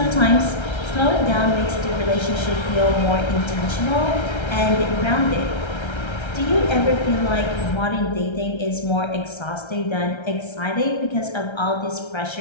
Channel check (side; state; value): right; late; 1.3 ms